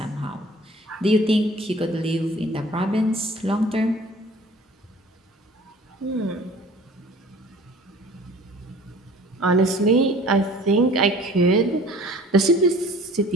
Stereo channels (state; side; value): normal; both; correlation 0.48